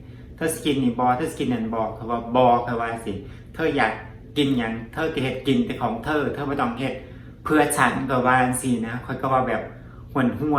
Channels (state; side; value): identical; both; correlation 1.00